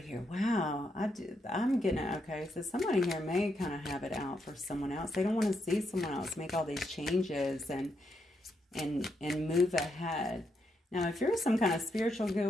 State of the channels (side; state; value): both; normal; correlation 0.80